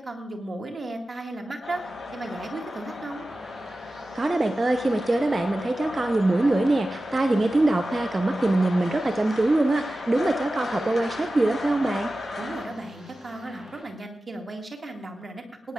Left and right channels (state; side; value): normal; both; correlation 0.95